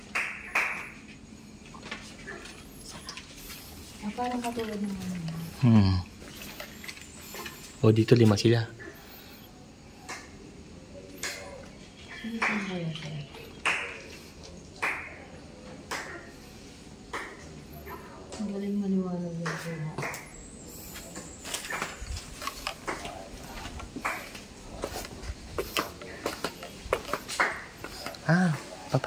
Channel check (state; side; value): identical; both; correlation 1.00